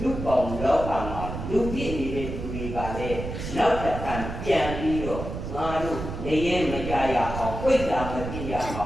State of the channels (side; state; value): right; noise; rumble, 7 dB below the sound